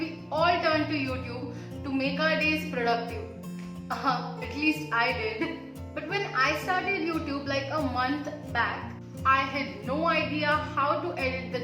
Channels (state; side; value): identical; both; correlation 1.00